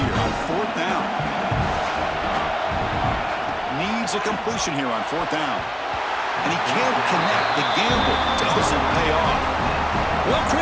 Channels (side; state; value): both; identical; correlation 1.00